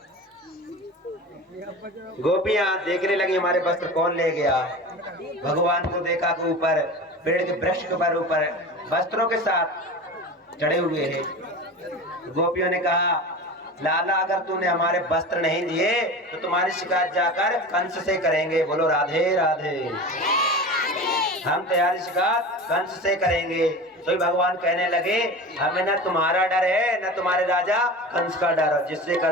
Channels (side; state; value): both; normal; correlation 0.32